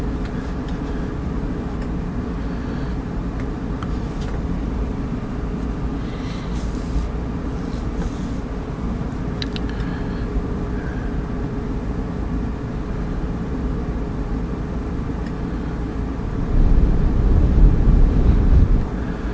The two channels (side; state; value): both; identical; correlation 1.00